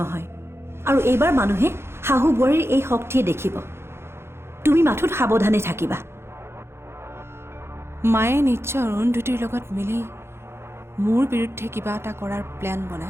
হয় আৰু এইবাৰ মানুহে শাহু বোৱাৰীৰ এই শক্তিয়ে দেখিব তুমি মাথোত সাৱধানে থাকিবা মায়ে নিশ্চয় অৰুন্ধতীৰ লগত মিলি মোৰ বিৰুদ্ধে কিবা এটা কৰাৰ প্লেন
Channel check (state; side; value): late; left; 0.12 ms